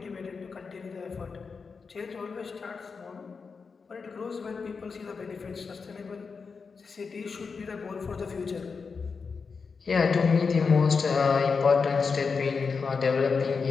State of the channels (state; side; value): quieter; right; 5.1 dB